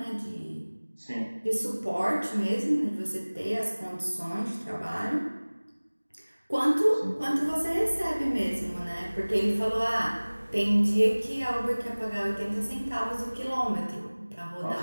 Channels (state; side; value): inverted; both; correlation -1.00